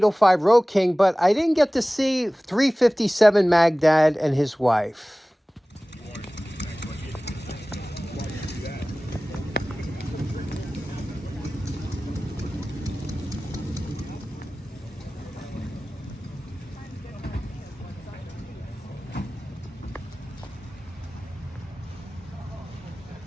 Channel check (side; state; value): both; normal; correlation 0.98